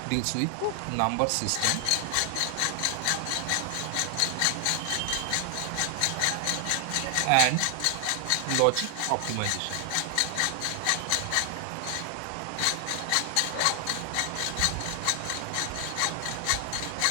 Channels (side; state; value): both; different; correlation 0.00